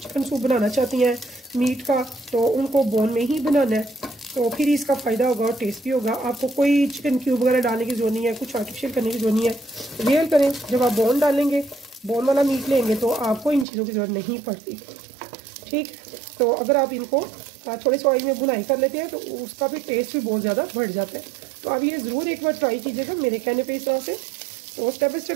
सूप बनाना चाहती हैं मीट का, तो उनको बोन में ही बनाना है, तो फिर इसका फ़ायदा होगा और टेस्ट भी होगा। आपको कोई चिकन क्यूब वगैरह डालने की जरूरत नहीं है, कुछ आर्टिफिशियल करने की जरूरत नहीं है। रियल करें, जब आप बोन डालेंगे, बोन वाला मीट लेंगे तो आपको इन चीज़ों की ज़रूरत नहीं पड़ती। ठीक, तो अगर आप इनको थोड़े से ऑयल में बुनाई कर लेते हैं तो उसका भी टेस्ट भी बहुत ज़्यादा बढ़ जाता है। तो आप ये ज़रूर एक बार ट्राई कीजिएगा मेरे कहने पे इस तरह से, और स्टेप बाई स्टेप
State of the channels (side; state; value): left; drops out; at 13.7 s